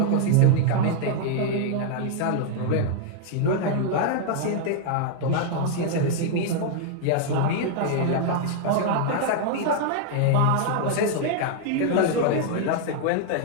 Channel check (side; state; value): both; different; correlation 0.00